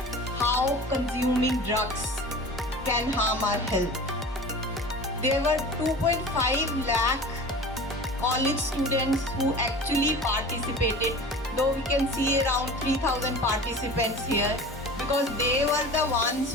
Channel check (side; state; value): both; normal; correlation 0.37